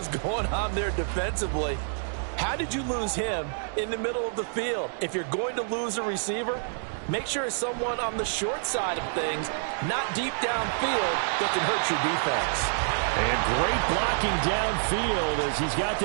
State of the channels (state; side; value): silent; left; digital silence